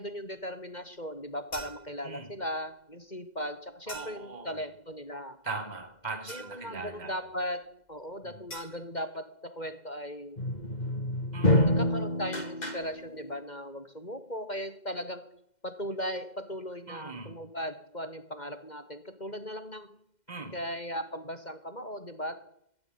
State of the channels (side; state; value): right; late; 2.1 ms